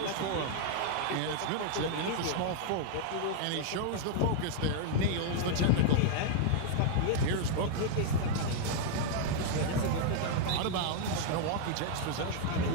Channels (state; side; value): different; both; correlation -0.01